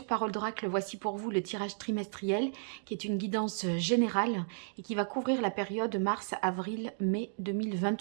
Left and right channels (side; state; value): left; silent; digital silence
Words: Parole d'Oracle. Voici pour vous le tirage trimestriel qui est une guidance générale et qui va couvrir la période mars, avril, mai